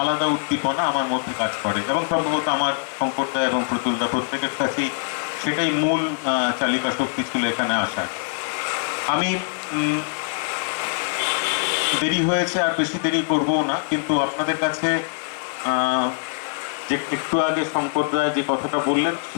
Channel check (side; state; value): right; silent; digital silence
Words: উদ্দীপনা আমার মধ্যে কাজ করে, এবং সম্ভবত আমার শঙ্করদা এবং প্রতুলদা প্রত্যেকের কাছেই সেটাই মূল চালিকা শক্তি ছিল এখানে আসার। আমি দেরি হয়েছে, আর বেশি দেরি করবো না, কিন্তু আপনাদের কাছে যে একটু আগে শঙ্করদা যে কথাটা বললেন,